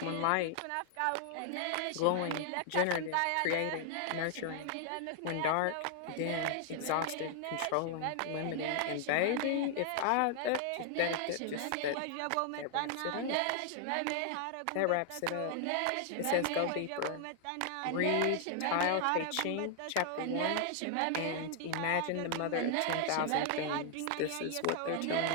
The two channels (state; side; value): different; both; correlation 0.00